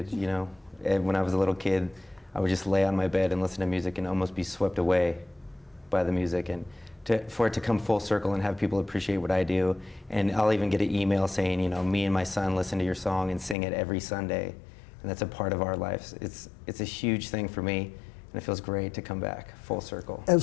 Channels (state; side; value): drops out; right; at 13.6 s